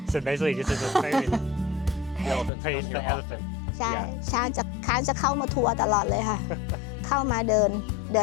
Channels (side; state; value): right; drops out; at 2.5 s